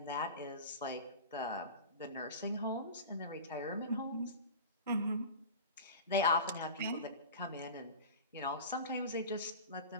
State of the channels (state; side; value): inverted; both; correlation -0.32